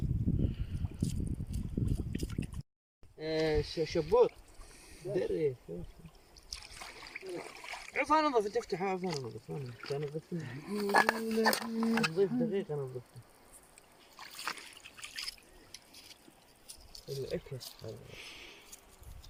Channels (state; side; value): identical; both; correlation 1.00